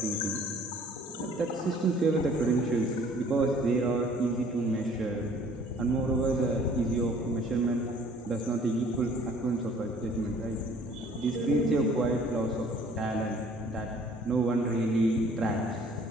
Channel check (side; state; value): both; normal; correlation 0.55